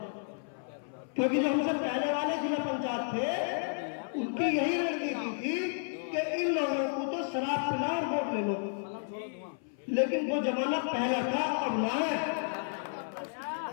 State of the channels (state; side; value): silent; right; 56 dB below the other